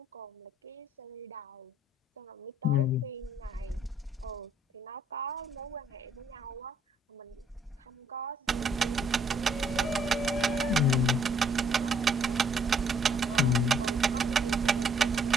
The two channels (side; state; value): both; normal; correlation 0.65